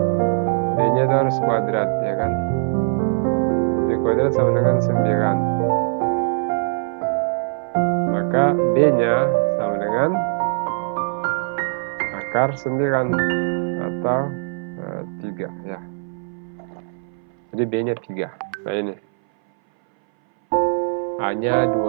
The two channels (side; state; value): left; silent; 61 dB below the other